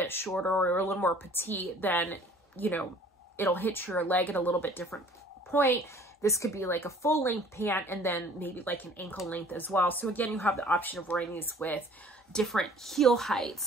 shorter or a little more petite, then, you know, it'll hit your leg at a little bit different point. This could be like a full length pant and then maybe like an ankle length as well. So again, you have the option of wearing these with different heel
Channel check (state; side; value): normal; both; correlation 0.52